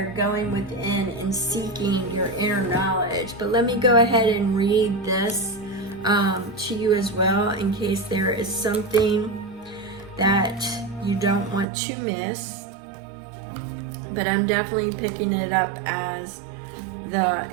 going within and seeking your inner knowledge. But let me go ahead and read this to you as well, in case there is something that you don't want to miss. But I'm definitely picking it up as the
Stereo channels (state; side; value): drops out; left; at 11.7 s